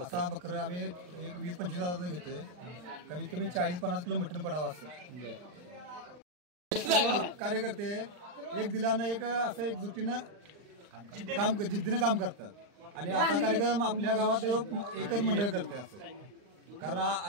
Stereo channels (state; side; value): late; left; 39 ms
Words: असा बकरं आम्ही एक 20-25 हजाराचा घेतोय. कमीत कमी 40-50 किलो मटण पडावं असं. कार्यकर्ते एक दिलानं एक असं एक जुटीनं जिद्दीनं काम करतात. आणि असा कार्यक्रम आपल्या गावात एकच मंडळ करते असं.